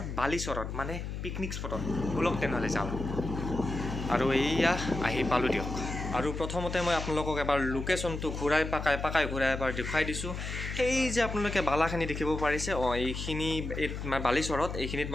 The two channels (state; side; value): noise; left; hum, 5 dB below the sound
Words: বালিচৰত মানে পিকনিক স্পটত ব্লগ তেনেহ'লে যাওঁ আৰু এইয়া আহি পালোঁ দিয়ক আৰু প্ৰথমতে মই আপোনালোকক এবাৰ লোকেশ্যনটো ঘূৰাই পাকাই ঘূৰাই এবাৰ দেখুৱাই দিছোঁ সেই যে আপোনালোকে বালাখিনি দেখিব পাৰিছে এইখিনি বালিচৰত এইখিনিত